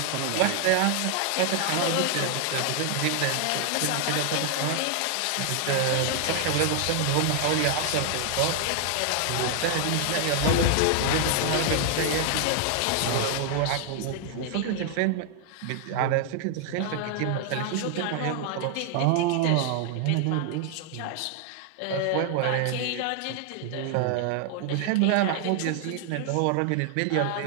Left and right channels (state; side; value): different; both; correlation 0.00